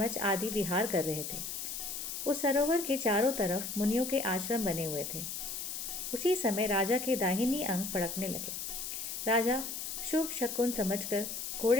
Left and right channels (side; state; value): left; noise; hiss, 5 dB below the sound